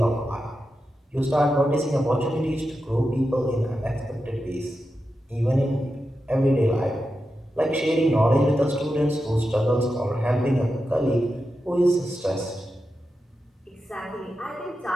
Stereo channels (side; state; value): both; normal; correlation 0.89